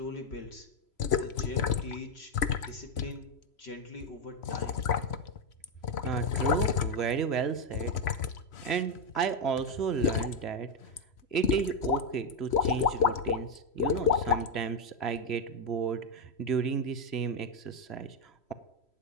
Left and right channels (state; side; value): late; right; 3.0 ms